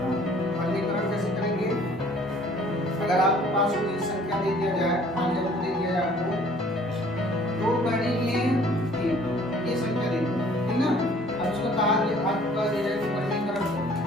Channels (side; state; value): both; normal; correlation 0.55